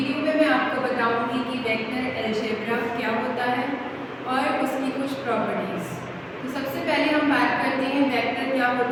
में मैं आपको बताऊंगी कि वेक्टर अलजेब्रा क्या होता है और उसकी कुछ प्रॉपर्टीज। तो सबसे पहले हम बात करते हैं वेक्टर क्या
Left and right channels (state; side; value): identical; both; correlation 1.00